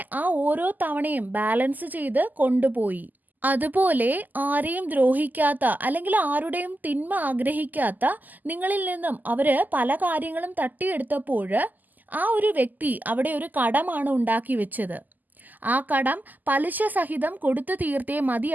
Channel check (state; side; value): late; left; 0.084 ms